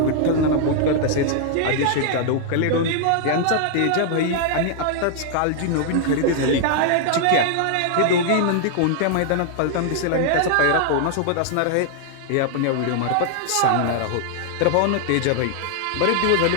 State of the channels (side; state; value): both; different; correlation 0.00